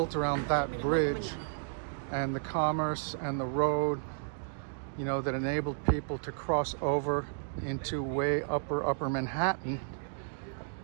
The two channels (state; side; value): silent; left; digital silence